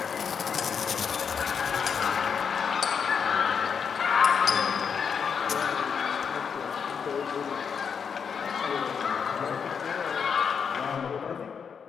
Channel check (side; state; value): right; quieter; 6.7 dB